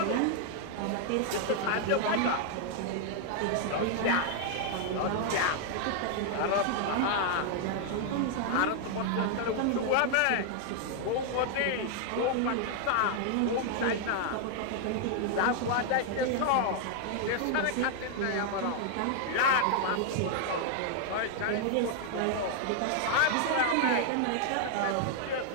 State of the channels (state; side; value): different; both; correlation 0.00